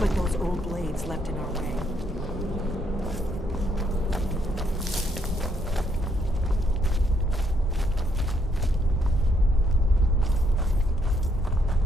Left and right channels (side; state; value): both; normal; correlation 0.73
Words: like those old blades left in our way.